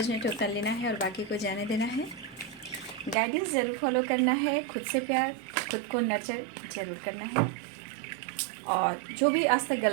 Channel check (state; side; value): drops out; left; at 3.2 s